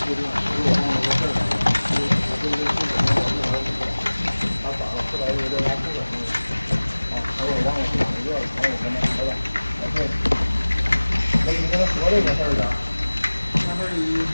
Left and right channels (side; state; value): both; inverted; correlation -1.00